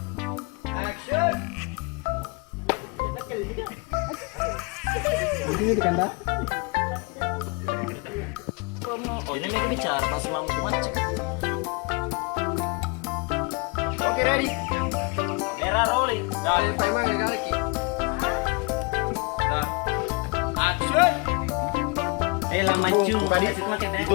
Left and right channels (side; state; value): right; quieter; 29.8 dB